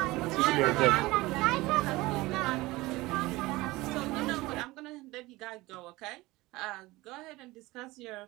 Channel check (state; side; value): quieter; left; 20.3 dB